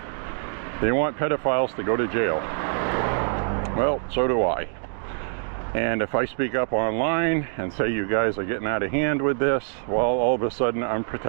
they want pedophiles to go to jail. Well, so do I. And if I speak up online and say you guys are getting out of hand with this, well, all of a sudden I'm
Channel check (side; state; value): left; silent; digital silence